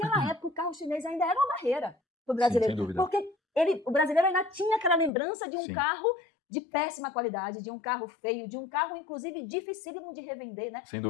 época, o carro chinês ainda era uma barreira para o brasileiro. Sim, sem dúvida. Porque o brasileiro ainda tinha aquela lembrança de um carro de péssima qualidade, de um carro feio, de um carro, inclusive, dificílimo de revender, né? Sem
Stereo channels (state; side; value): drops out; right; at 5.1 s